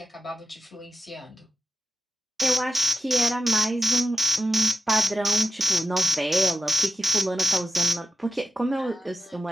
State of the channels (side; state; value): both; normal; correlation 0.92